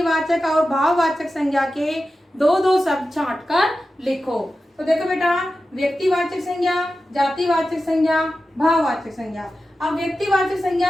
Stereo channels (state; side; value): normal; both; correlation 0.93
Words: और भाववाचक संज्ञा के दो दो शब्द छांट कर लिखो। तो देखो बेटा, व्यक्तिवाचक संज्ञा, जातिवाचक संज्ञा, भाववाचक संज्ञा। अब व्यक्तिवाचक